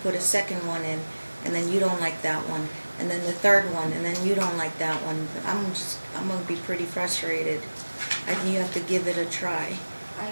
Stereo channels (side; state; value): both; inverted; correlation -1.00